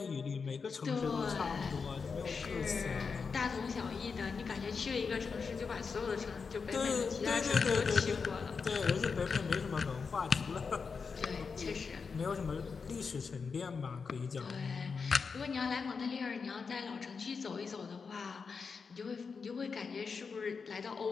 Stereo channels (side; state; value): right; quieter; 5.3 dB